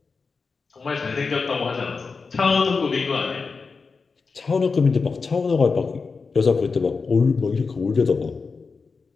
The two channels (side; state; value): right; quieter; 4.7 dB